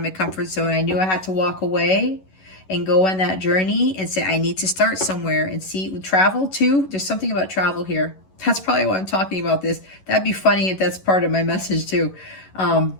my comfort zone. I knew I had to walk away and go on that journey and say, I need to start somewhere and see, travel too. There's something about travel here. That's probably why I'm talking about this. That'd be funny if that's part of my message too.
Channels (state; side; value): late; right; 11 ms